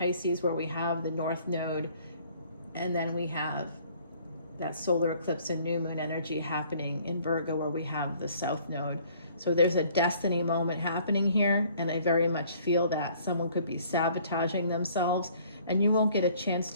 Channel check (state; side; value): inverted; both; correlation -0.58